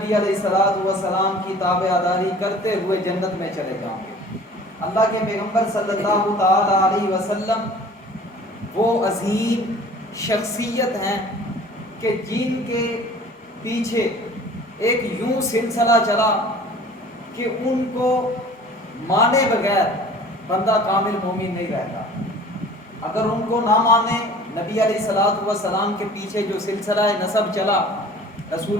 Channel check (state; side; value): normal; both; correlation 0.46